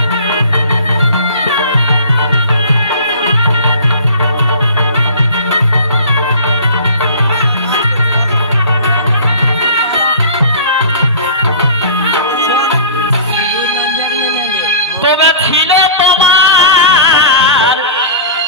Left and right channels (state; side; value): inverted; both; correlation -0.40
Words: তবে ছিল তোমার